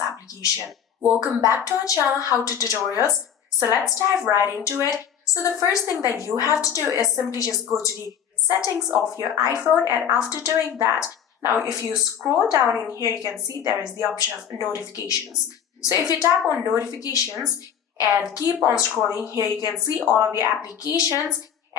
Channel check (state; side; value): quieter; right; 8.6 dB